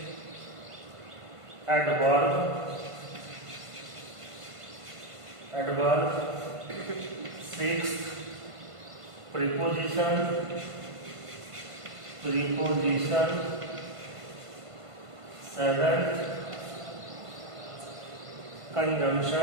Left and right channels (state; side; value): late; left; 1.5 ms